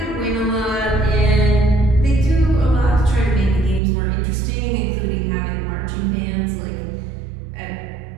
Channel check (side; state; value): left; drops out; at 3.8 s